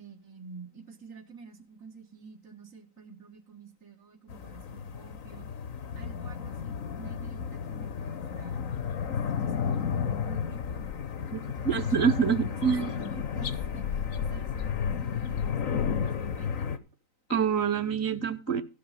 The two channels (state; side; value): late; right; 3.9 ms